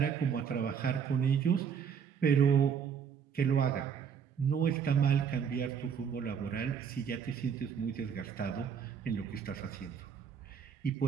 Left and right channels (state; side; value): quieter; left; 7.2 dB